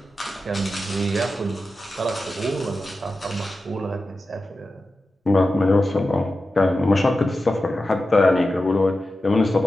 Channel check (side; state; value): both; normal; correlation 0.92